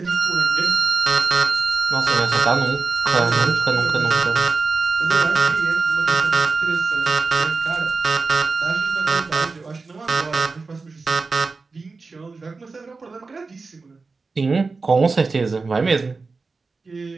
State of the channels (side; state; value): left; quieter; 4.1 dB